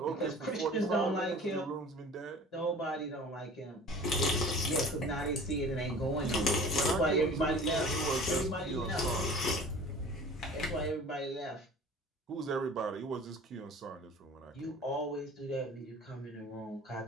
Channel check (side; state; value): both; normal; correlation 0.44